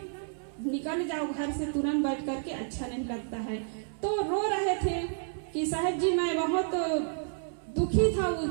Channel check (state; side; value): silent; left; 57 dB below the other